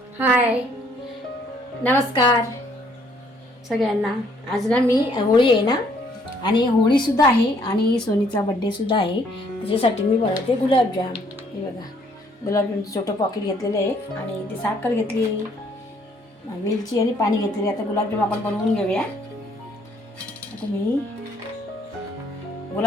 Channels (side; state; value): both; normal; correlation 0.65